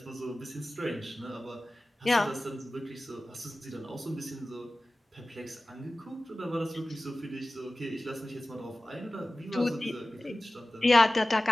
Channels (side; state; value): both; normal; correlation 0.97